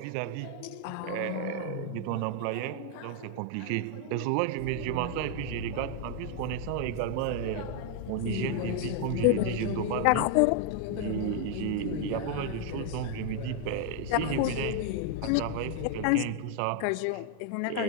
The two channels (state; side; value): different; both; correlation 0.00